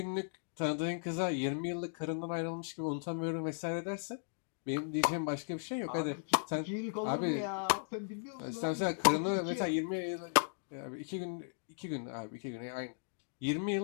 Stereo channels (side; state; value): right; silent; digital silence